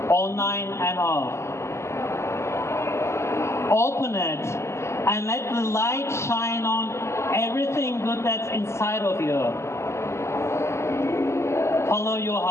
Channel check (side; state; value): right; late; 0.13 ms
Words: online and off. Open it and let the light shine on everything good that's inside of you. Follow your